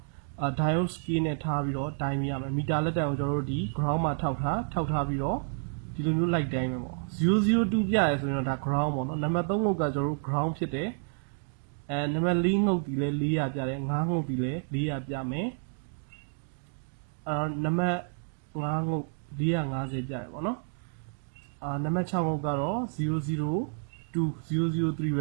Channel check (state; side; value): silent; left; 58 dB below the other